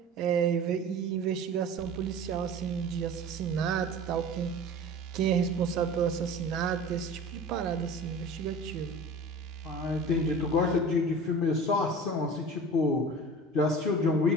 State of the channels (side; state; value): both; normal; correlation 0.38